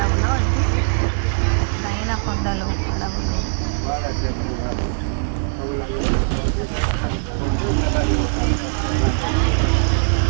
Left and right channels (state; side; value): silent; left; digital silence